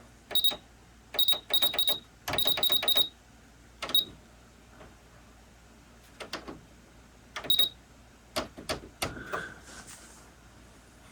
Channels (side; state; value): both; identical; correlation 1.00